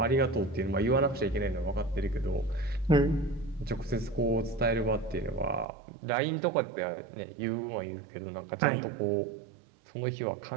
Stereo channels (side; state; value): left; drops out; at 5.7 s